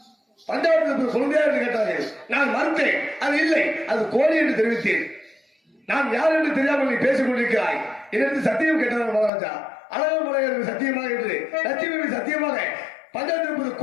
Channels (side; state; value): right; drops out; at 9.3 s